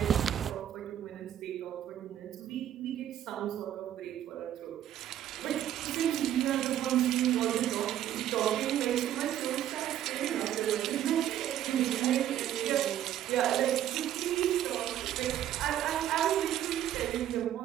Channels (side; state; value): left; quieter; 11.5 dB